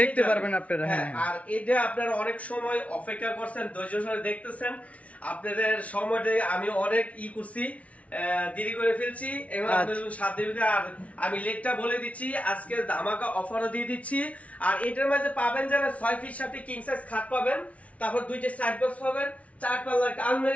দেখতে পারবেন আপনারা। হ্যাঁ, আর এটা আপনারা অনেক সময় অপেক্ষা করছেন, ধৈর্য সহকারে দেখতেছেন। আপনাদের সময়টা আমি অনেক করছি, দেরি করে ফেলছি, এবং আপনাদের সাথে আর আমি লেটটা বলে দিচ্ছি, আজকে ধামাকা অফারও দিয়ে দিচ্ছি। আর এটার মাঝে পাবেন যারা 6 ফিট সাথে কিং সাইজ খাট পাবেন, তারপর দুইটা সাইড বক্স পাবেন, 4 পাল্লার একটা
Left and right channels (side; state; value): right; late; 0.065 ms